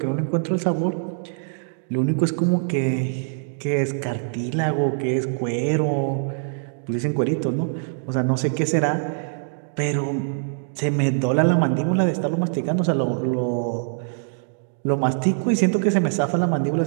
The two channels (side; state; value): left; silent; digital silence